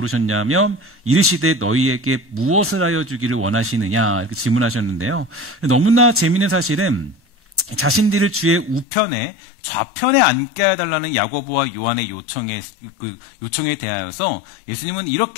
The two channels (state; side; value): drops out; right; at 8.8 s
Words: 이르시되 너희에게 무엇을 하여 주기를 원하시느냐? 이렇게 질문하셨는데요. 너무나 재미있는 사실은 자신들을 주의 우편에 좌편에 앉게 해달라는 야고보와 요한의 요청에 대하여서 예수님은